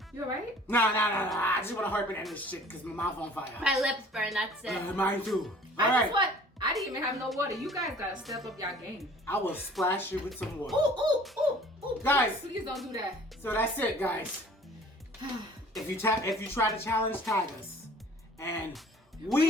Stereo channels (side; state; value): both; normal; correlation 0.50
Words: You alright? Nah. I just want to harp in this shit because my mouth on fire. My lips burn, that's it. Mine too. I All right. just what? I didn't even have no water. You guys gotta step up y'all game. I will splash you with some water. Ooh. Guys. Please don't do that. So that's it, guys. If you try to challenge, tag us. And